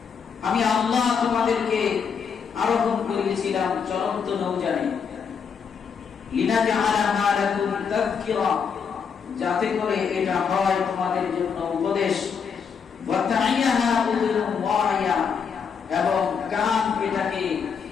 আমি আল্লাহ তোমাদেরকে আরোহণ করিয়েছিলাম চলন্ত নৌযানে। লিনাজআলাহা লাকুম তাযকিরা, যাতে করে এটা হয় তোমাদের জন্য উপদেশ। ওয়া তাইয়াহা উযুরুন ওয়াইয়া, এবং কান এটাকে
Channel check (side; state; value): right; quieter; 6.5 dB